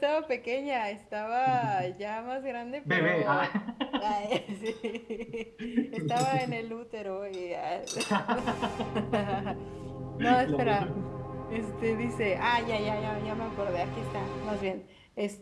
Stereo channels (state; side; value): identical; both; correlation 1.00